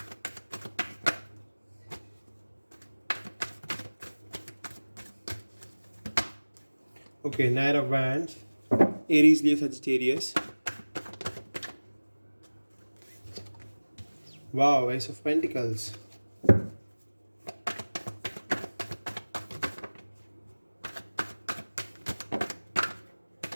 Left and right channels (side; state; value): both; inverted; correlation -1.00